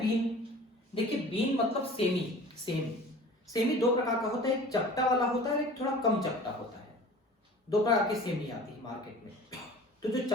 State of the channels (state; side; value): normal; both; correlation 0.42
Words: बीन, देखिए बीन मतलब सेमी दो प्रकार का होता है, एक चपटा वाला होता है, एक थोड़ा कम चपटा होता है। दो प्रकार की सेमी आती है मार्केट में। तो जो